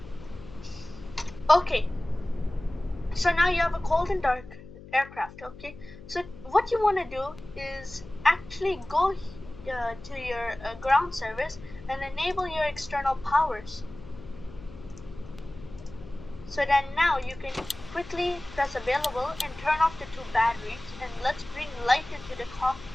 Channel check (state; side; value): noise; left; hum, 17 dB below the sound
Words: Okay, so now you have a cold and dark aircraft. Okay, so what you want to do is actually go to your ground service and enable your external powers. So then now you can quickly press available and turn off the two batteries, and let's bring light into the